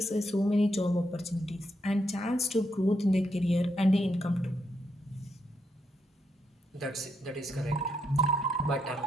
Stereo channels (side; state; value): both; normal; correlation 0.79